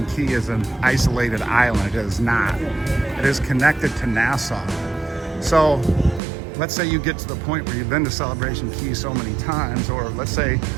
Key is an isolated island. It is not. It is connected to Nassau. So let's say you get to the point where you've been to Celebration Key so many times, or let's say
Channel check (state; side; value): drops out; left; at 6.2 s